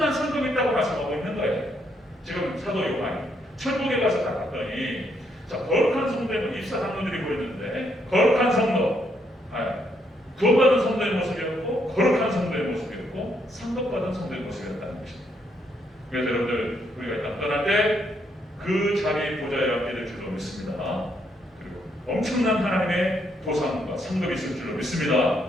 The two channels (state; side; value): normal; both; correlation 0.74